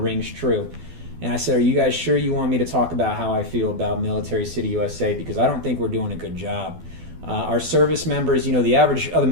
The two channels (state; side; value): late; left; 12 ms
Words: rings true. And I said, are you guys sure you want me to talk about how I feel about military city USA? Because I don't think we're doing a good job. Our service members, the average of the